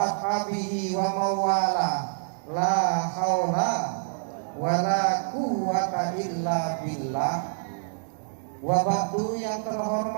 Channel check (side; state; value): left; silent; digital silence